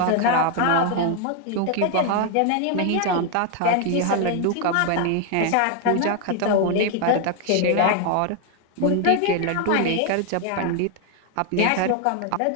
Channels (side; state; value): both; different; correlation 0.00